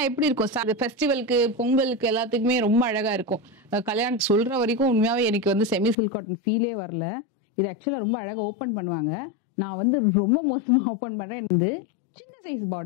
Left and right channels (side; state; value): right; drops out; at 6.0 s